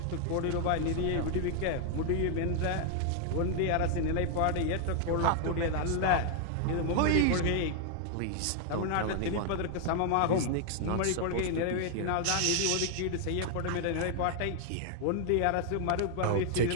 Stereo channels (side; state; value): both; different; correlation 0.00